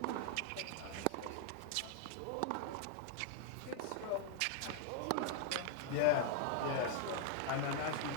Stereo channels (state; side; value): different; both; correlation -0.01